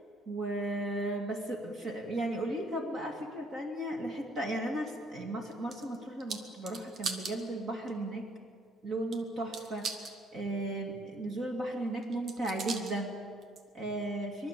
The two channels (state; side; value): normal; both; correlation 0.65